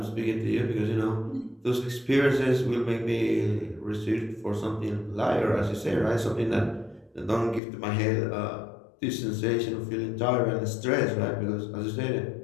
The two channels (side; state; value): right; drops out; at 7.6 s